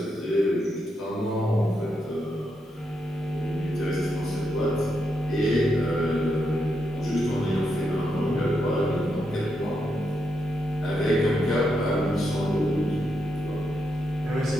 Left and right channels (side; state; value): both; normal; correlation 0.82